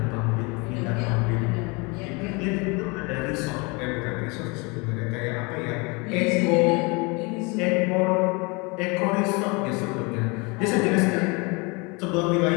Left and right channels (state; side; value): quieter; right; 28.9 dB